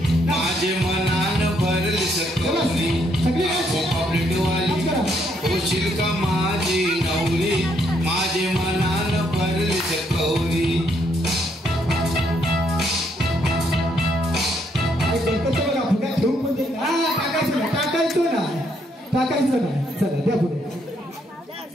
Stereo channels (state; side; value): normal; both; correlation 0.72